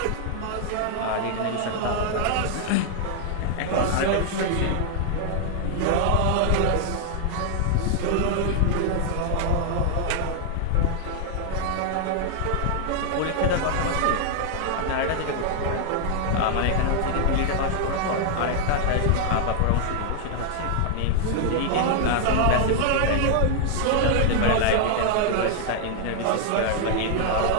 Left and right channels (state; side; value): different; both; correlation 0.00